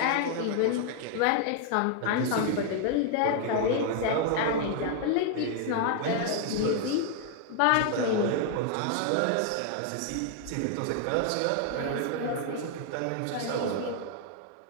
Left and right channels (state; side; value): different; both; correlation 0.00